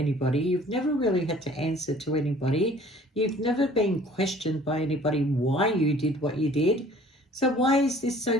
You've never really had to answer to anybody. You've never been questioned by anybody why you did what you did. So why is this so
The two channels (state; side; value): normal; both; correlation 0.52